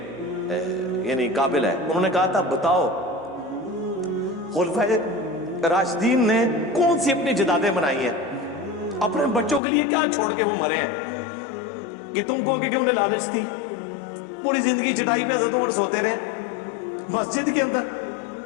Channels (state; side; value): drops out; right; at 9.6 s